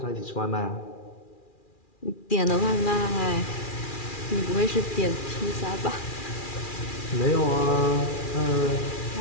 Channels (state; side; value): late; right; 2.4 ms